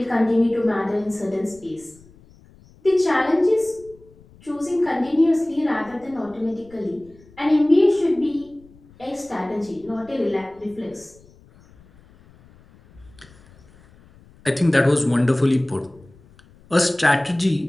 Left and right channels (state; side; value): noise; left; rumble, 27 dB below the sound